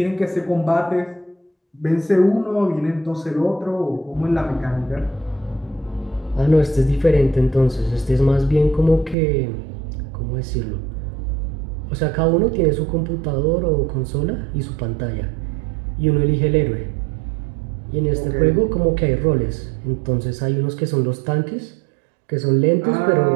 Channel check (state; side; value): drops out; left; at 9.2 s